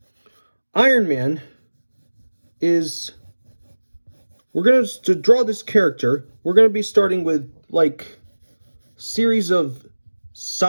Iron Man to draw this character, we're going to be starting with like series of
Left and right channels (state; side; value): inverted; both; correlation -1.00